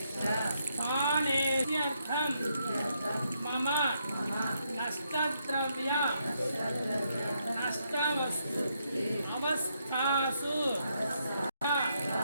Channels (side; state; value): both; inverted; correlation -0.77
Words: స్థానేత్యర్థం మమ నష్టద్రవ్య నష్టవస్తు అవస్థాసు